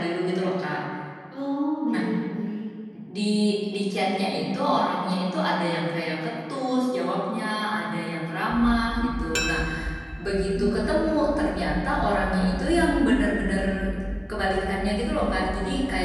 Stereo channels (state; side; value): identical; both; correlation 1.00